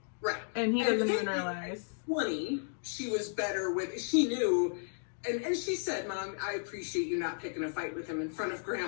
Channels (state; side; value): silent; right; digital silence